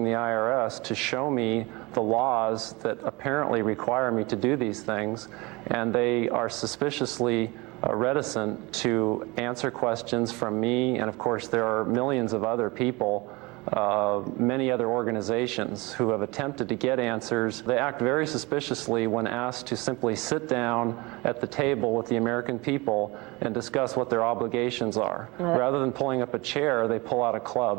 the IRS to show me the laws that apparently require me to do these things, and they are suspiciously reticent to answer questions from me. And of course, there are millions of other people, many other organizations who have attempted to get answers. They act very suspiciously when asked to simply sit down at the table with the American people and discuss what their obligations are. Rather than pulling up a chair, they pull out a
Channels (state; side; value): quieter; left; 24.6 dB